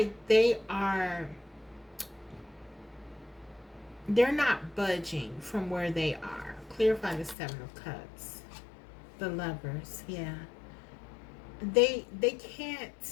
they're not budging from where they are. Clarify the Seven of Cups. The Lovers, yeah. They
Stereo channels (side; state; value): right; drops out; at 7.4 s